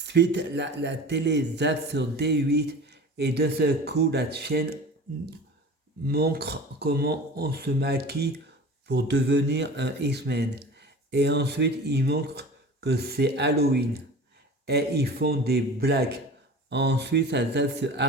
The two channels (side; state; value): both; normal; correlation 0.38